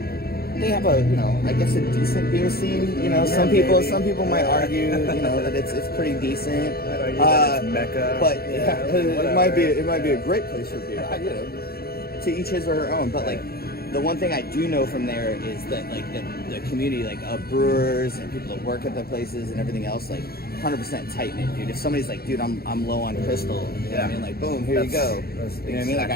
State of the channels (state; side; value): late; right; 0.45 ms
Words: they have a I guess a decent beer scene. You know, some people might argue that it's pretty decent. It's Mecca, but it might be a great place for beer. To each his or her own. But like, the one thing I do know from there is that like the community, like of brewers and people that work at the places and everything else, like 100% tight knit, dude. If somebody's like, dude, I'm low on crystal, you know what I mean? Like, boom, here you go. You know what I mean? Like,